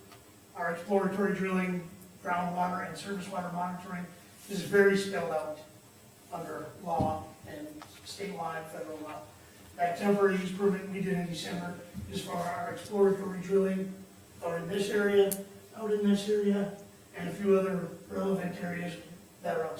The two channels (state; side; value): identical; both; correlation 1.00